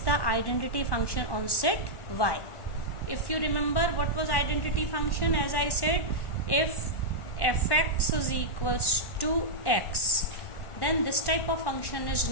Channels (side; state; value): right; late; 1.1 ms